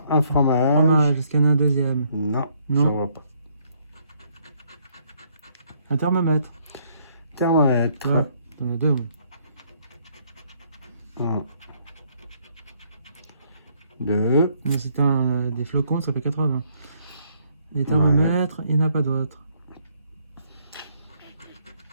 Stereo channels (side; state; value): both; inverted; correlation -0.68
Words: un fromage. Fromage, est-ce qu'il y en a un deuxième? Non, Non. je vois pas. Un thermomètre. Thermomètre. Ouais, t'en as deux. Oui. 1, 2. Mais si t'as des flocons, ça fait 80. Les thermomètres, il n'y en a pas d'autres.